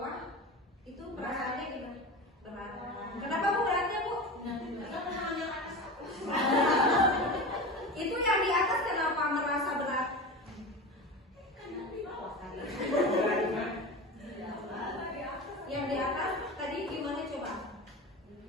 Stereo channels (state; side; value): normal; both; correlation 0.28